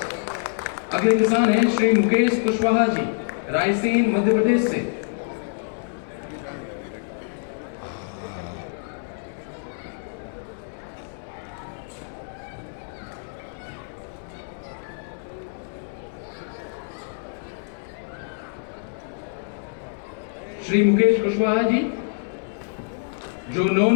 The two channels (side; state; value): right; silent; 60 dB below the other